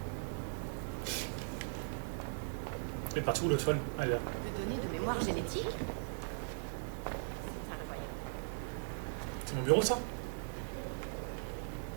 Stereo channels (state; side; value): silent; left; 52 dB below the other